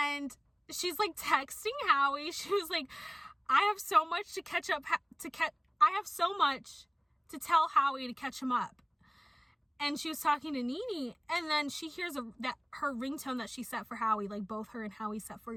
she's, like, texting Howie. She was like, I have so much to tell Howie to catch him up. And she was talking to Nene, and then she hears that her ringtone that she set for Howie, like, both her and Howie set for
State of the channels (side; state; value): both; identical; correlation 1.00